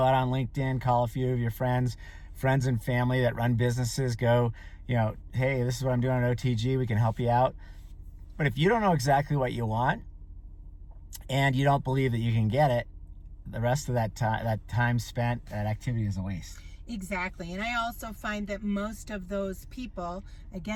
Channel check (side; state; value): both; identical; correlation 1.00